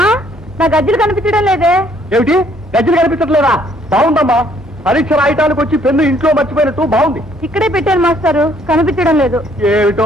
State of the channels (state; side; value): normal; both; correlation 0.64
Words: నా గజ్జలు కనిపించడం లేదే. ఏమిటి, గజ్జలు కనిపించట్లేదా? బాగుందమ్మా, పరీక్ష రాయటానికి వచ్చి పెన్ను ఇంట్లో మర్చిపోయినట్టు బాగుంది. ఇక్కడే పెట్టాను మాస్టారు, కనిపించడం లేదు.